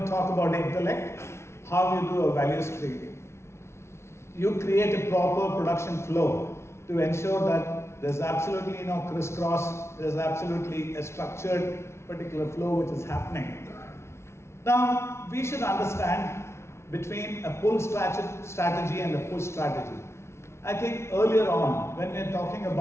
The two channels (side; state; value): right; late; 0.13 ms